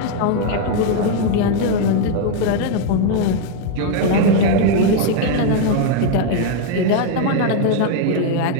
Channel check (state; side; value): different; both; correlation 0.01